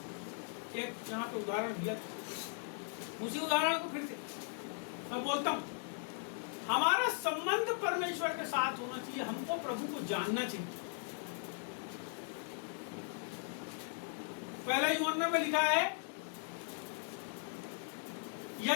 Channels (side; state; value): right; silent; 52 dB below the other